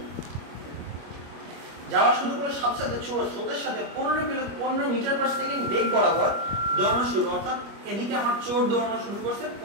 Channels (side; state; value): left; late; 25 ms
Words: সাথে সাথে চোর স্রোতের সাথে 15 মিটার/সেকেন্ড বেগ বরাবর দৌড়ানো শুরু, অর্থাৎ এদিকে আমার চোর দৌড়ানো শুরু করছে